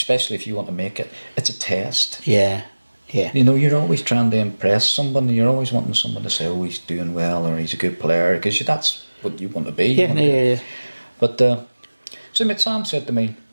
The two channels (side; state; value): both; inverted; correlation -1.00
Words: if you want to make it, it's a test. Yeah. You know, you're always trying to impress someone. You're always wanting someone to say, "Oh, he's doing well," or "He's a good player," because that's what you want to be. Yeah. But so Sam said to me,